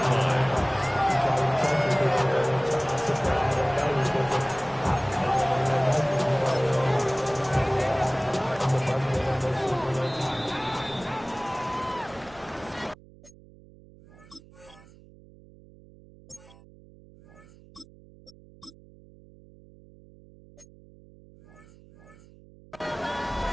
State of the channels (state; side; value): noise; right; hum, 23 dB below the sound